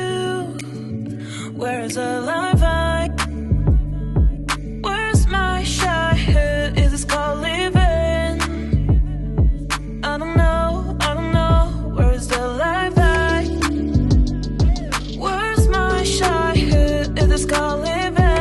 Where's the life I? Where's my childhood? Is this called living? I don't know. Where's the life I? Where's my childhood? Is this called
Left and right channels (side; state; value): both; identical; correlation 1.00